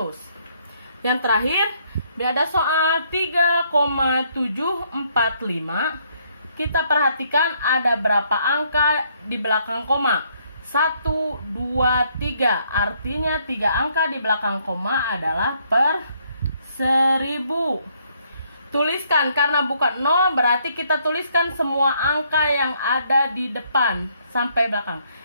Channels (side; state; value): both; inverted; correlation -0.69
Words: Yang terakhir, ada soal 3,745. Kita perhatikan ada berapa angka di belakang koma? 1, 2, 3. Artinya 3 angka di belakang koma adalah per 1000. Tuliskan, karena bukan 0 berarti kita tuliskan semua angka yang ada di depan sampai belakang.